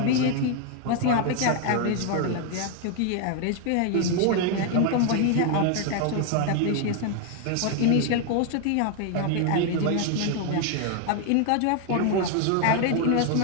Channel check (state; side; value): different; both; correlation 0.00